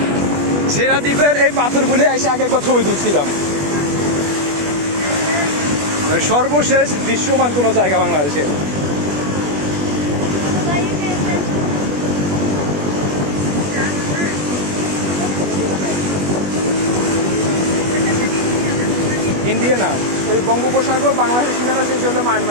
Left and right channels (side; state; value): left; late; 21 ms